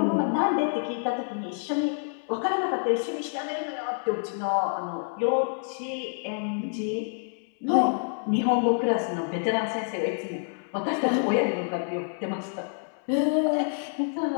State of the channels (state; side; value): silent; right; 60 dB below the other